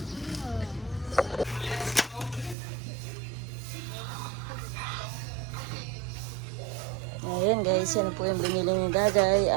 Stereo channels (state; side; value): drops out; left; at 2.6 s